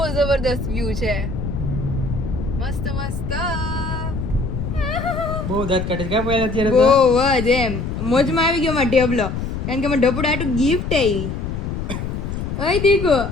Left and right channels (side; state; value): left; noise; rumble, 4 dB below the sound